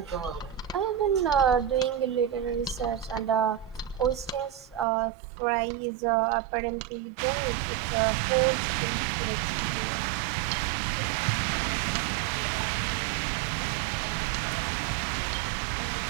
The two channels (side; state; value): left; drops out; at 4.9 s